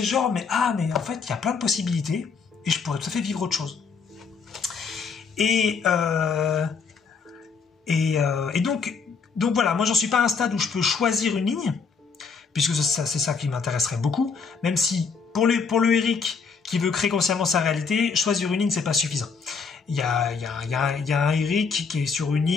genre, mais en fait, il y a plein de possibilités et je pourrais tout à fait vivre autre chose. Et donc voilà, moi j'en suis pas à un stade où je peux choisir une ligne, puisque c'est ça qui m'intéresserait beaucoup, même si pour le Eric qui veut créer consciemment sa réalité, choisir une ligne c'est pas suffisant. Il y a un Eric qui est sur une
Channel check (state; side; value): quieter; right; 5.4 dB